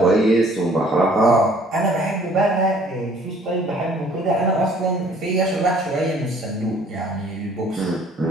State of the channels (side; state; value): both; normal; correlation 0.57